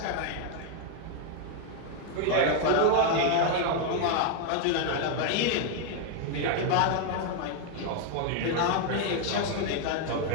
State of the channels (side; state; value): both; different; correlation 0.00